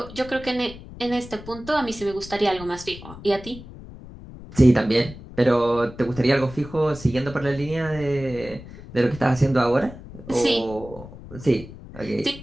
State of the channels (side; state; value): left; noise; rumble, 15 dB below the sound